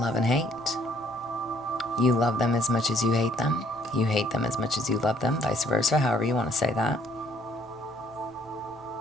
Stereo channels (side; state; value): right; noise; rumble, 28 dB below the sound